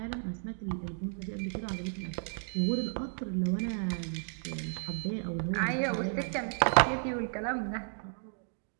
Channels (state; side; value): silent; left; 56 dB below the other